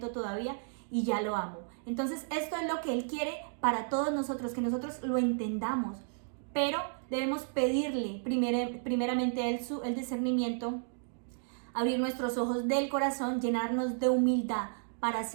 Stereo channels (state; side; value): silent; left; digital silence